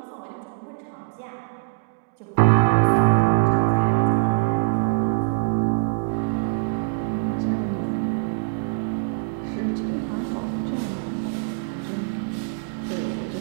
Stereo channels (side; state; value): left; silent; digital silence